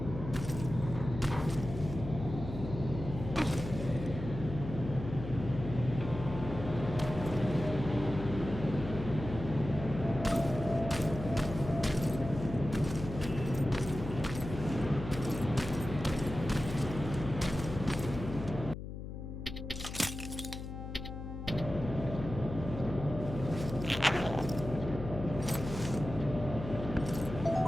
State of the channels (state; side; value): noise; left; hum, 8 dB below the sound